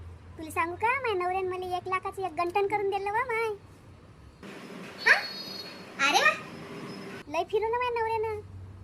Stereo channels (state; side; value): identical; both; correlation 1.00